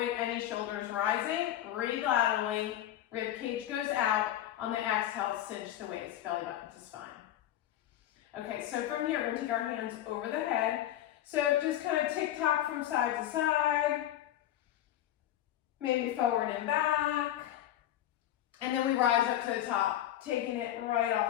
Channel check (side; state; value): right; quieter; 12.4 dB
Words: any shoulders rising. Breathe laterally. Rib cage goes out. On the exhale, cinch the waist, belly button to spine. Okay, so from here, we're going to take our hands over the head. So just kind of tick-tock from side to side. Maybe forward and back. And then we rise up to the top, taking it right